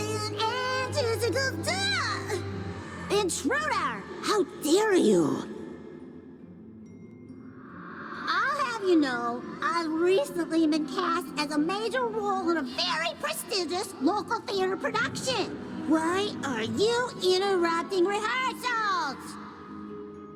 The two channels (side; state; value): both; identical; correlation 1.00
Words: and juicicles do. Intruder, how dare you? I'll have you know, I've recently been cast as a major role in a very prestigious local theater production. Why are you interrupting rehearsals?